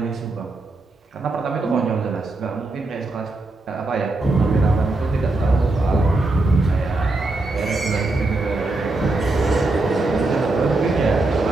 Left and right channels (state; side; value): quieter; left; 3.1 dB